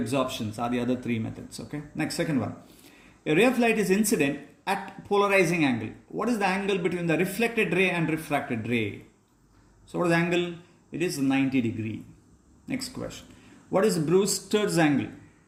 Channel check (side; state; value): both; identical; correlation 1.00